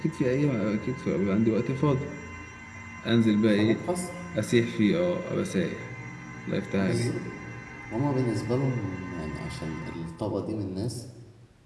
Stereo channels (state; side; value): identical; both; correlation 1.00